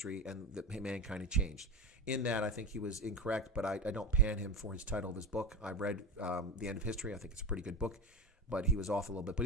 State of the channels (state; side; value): normal; both; correlation 0.24